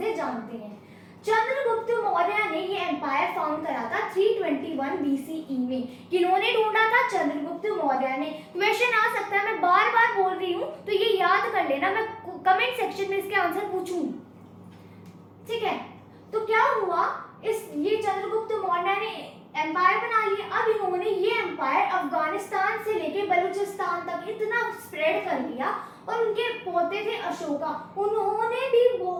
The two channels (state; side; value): identical; both; correlation 1.00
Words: जानते हैं। चंद्रगुप्त मौर्य ने ये एम्पायर फाउंड करा था 321 BCE में। किन्होंने ढूंढा था? चंद्रगुप्त मौर्य ने। क्वेश्चन आ सकता है, मैं बार बार बोल रही हूँ तो ये याद कर लेना, मैं कमेंट सेक्शन में इसके आंसर पूछूंगी। ठीक है। तो क्या हुआ, ये चंद्रगुप्त मौर्य ने एम्पायर बना लिया। अब इन्होंने ये एम्पायर अफगानिस्तान से लेके बलूचिस्तान तक इतना स्प्रेड कर लिया, और उनके पोते थे अशोका, उन्होंने भी